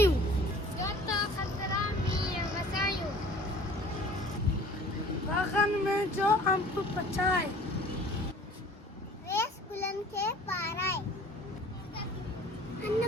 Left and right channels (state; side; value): normal; both; correlation 0.48